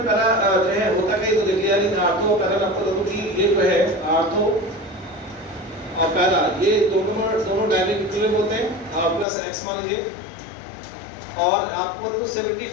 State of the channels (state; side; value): drops out; right; at 9.2 s